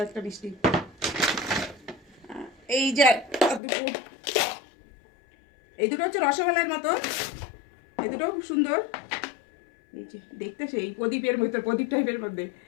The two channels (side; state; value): right; drops out; at 3.6 s